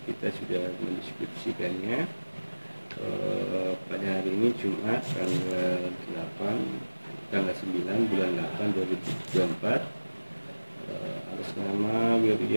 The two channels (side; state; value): both; inverted; correlation -1.00